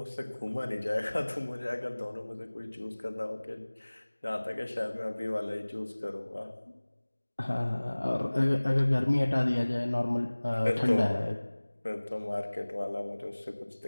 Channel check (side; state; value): both; inverted; correlation -1.00